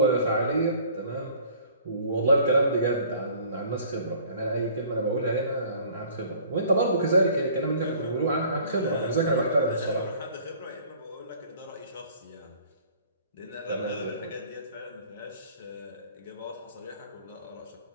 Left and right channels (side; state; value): both; inverted; correlation -0.51